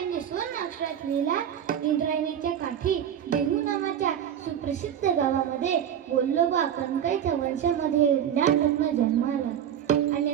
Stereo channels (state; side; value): quieter; left; 9.5 dB